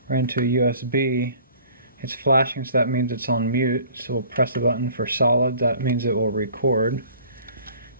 right into a USB. It's flashing, so that means it's on mute. So we'll press the button for solid. That means it will record.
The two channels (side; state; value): both; inverted; correlation -0.51